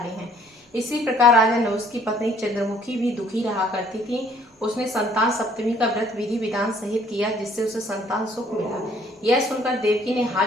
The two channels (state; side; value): normal; both; correlation 0.60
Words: हैं। इसी प्रकार राजा नहुष की पत्नी चंद्रमुखी भी दुखी रहा करती थी। उसने संतान सप्तमी का व्रत विधि विधान सहित किया, जिससे उसे संतान सुख मिला। यह सुनकर देवकी ने